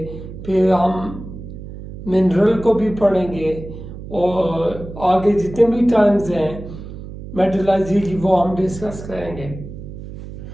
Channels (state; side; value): noise; right; hum, 12 dB below the sound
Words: फिर हम मिनरल को भी पढ़ेंगे और आगे जितने भी टर्म्स हैं मेटलर्जी की वो हम डिस्कस करेंगे।